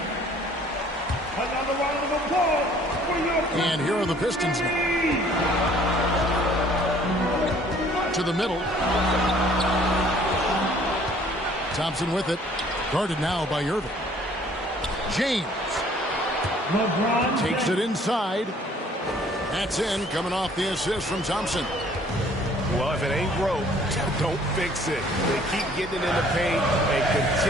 And here are the Pistons now. To the middle. Thompson with it. Guarded now by Irving. James. LeBron Takes it inside. That's in, coming off the assist from Thompson. Well, if it ain't broke, don't fix it. They keep getting it in the paint and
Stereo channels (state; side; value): normal; both; correlation 0.57